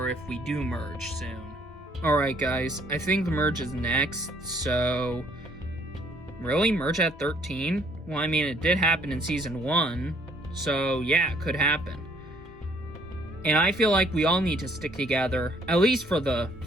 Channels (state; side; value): normal; both; correlation 0.63